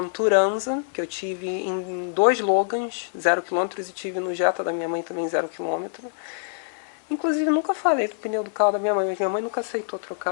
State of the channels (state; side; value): silent; right; digital silence